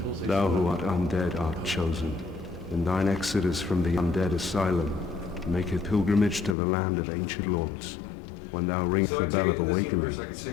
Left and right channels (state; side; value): drops out; right; at 6.6 s